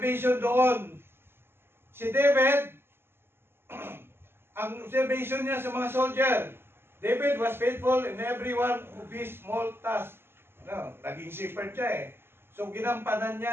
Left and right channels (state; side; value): late; left; 0.11 ms